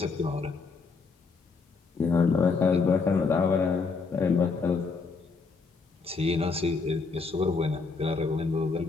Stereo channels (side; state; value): right; quieter; 4.6 dB